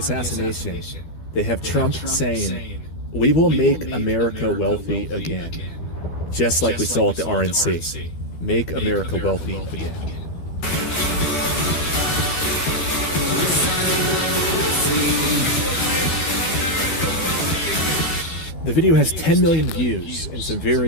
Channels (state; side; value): late; right; 12 ms